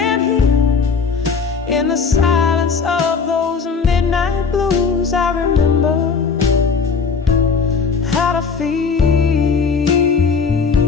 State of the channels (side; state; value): right; quieter; 5.4 dB